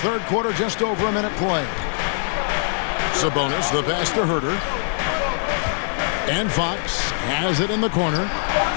third quarter, just over a minute play. Sabonis, the pass to Herter. And Fox has it in the corner.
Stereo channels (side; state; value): right; silent; digital silence